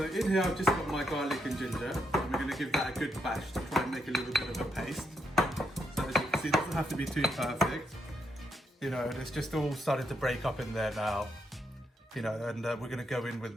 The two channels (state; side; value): normal; both; correlation 0.79